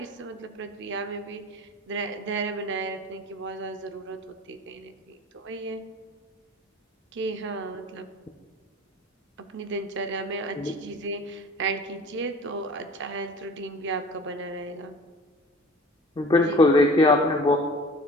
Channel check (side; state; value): both; normal; correlation 0.43